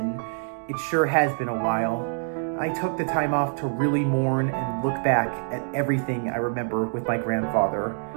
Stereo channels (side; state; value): left; silent; 60 dB below the other